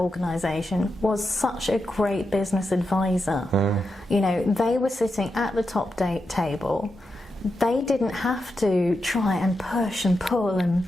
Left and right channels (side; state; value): both; normal; correlation 0.87